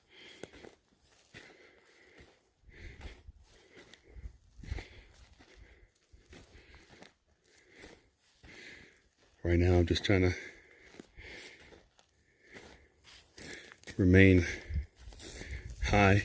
Right now I'm just trying to remain high,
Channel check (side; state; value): both; identical; correlation 1.00